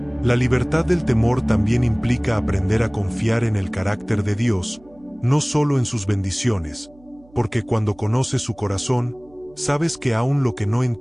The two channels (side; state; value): right; noise; hum, 27 dB below the sound